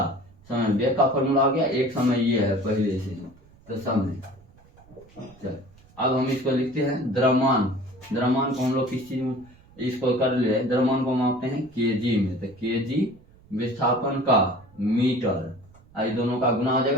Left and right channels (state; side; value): noise; right; rumble, 27 dB below the sound